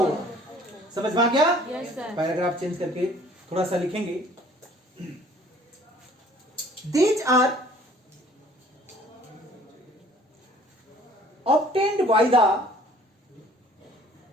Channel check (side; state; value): both; normal; correlation 0.54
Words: समझ में आ गया? पैराग्राफ चेंज करके थोड़ा सा लिखेंगे। These are obtained by